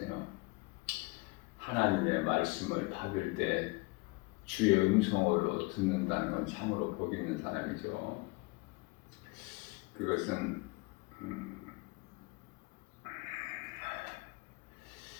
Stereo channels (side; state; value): right; quieter; 25.7 dB